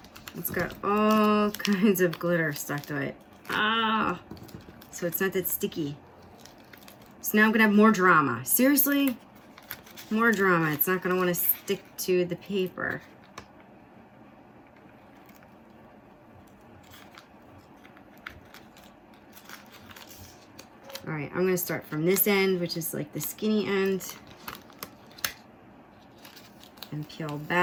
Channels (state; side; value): identical; both; correlation 1.00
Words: it's got all kinds of glitter stuck to it. So it's not that sticky. So now I'm gonna have more drama. Seriously? More drama. It's not gonna wanna stick to the paper. All right, I'm gonna start from this end, which is like the skinny end, and peel